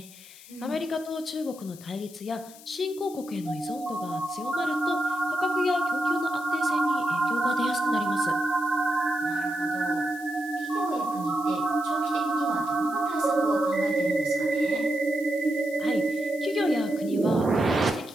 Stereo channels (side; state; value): left; noise; hiss, 19 dB below the sound